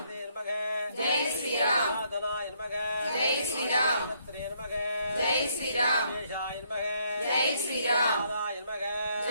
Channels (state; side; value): inverted; both; correlation -0.71